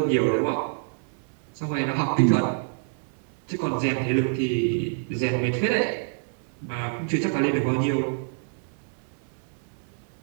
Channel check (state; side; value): silent; left; 60 dB below the other